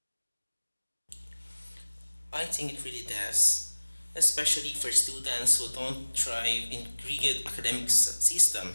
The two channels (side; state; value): both; inverted; correlation -1.00